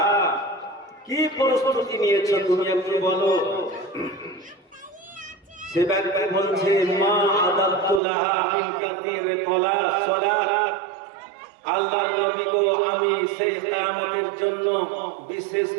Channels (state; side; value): drops out; left; at 8.0 s